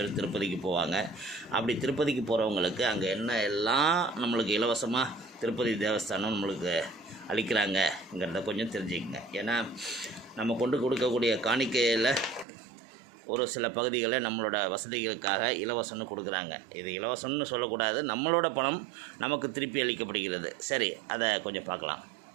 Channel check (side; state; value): left; drops out; at 12.5 s